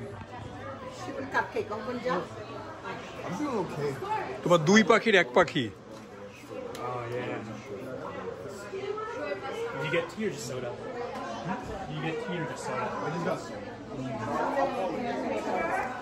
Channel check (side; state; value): both; identical; correlation 1.00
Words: কাপকেক কোন যা I'm doing okay. তোমার দুই পাখির এক পাখি। Oh yeah. You get tea or just soda? You get tea or just soda? I just got some.